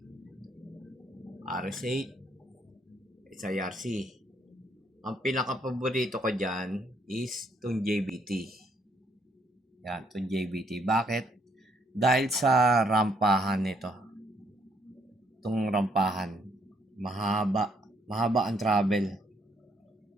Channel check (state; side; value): normal; both; correlation 0.70